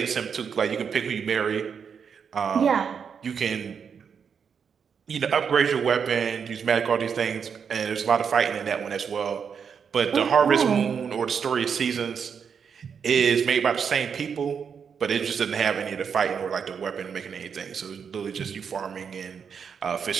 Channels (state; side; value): quieter; left; 6.8 dB